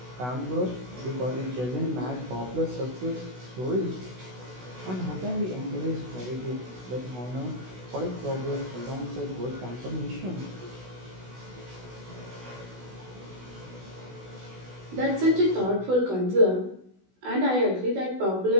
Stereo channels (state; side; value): late; left; 16 ms